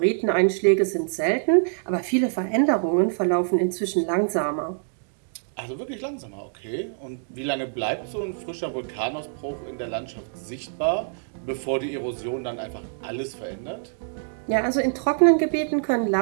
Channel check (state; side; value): silent; left; digital silence